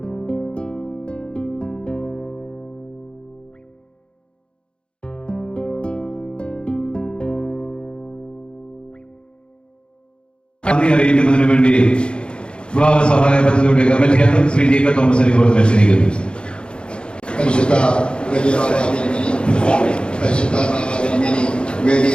നന്ദി അറിയിക്കുന്നതിന് വേണ്ടി വിവാഹ സഹായ പദ്ധതിയുടെ കമ്മിറ്റി അംഗം ശ്രീ ജെ കെ തോമസ് ഇപ്പോൾ ക്ഷണിക്കുന്നു. പരിശുദ്ധ വലിയ പരിശുദ്ധ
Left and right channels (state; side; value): late; right; 0.054 ms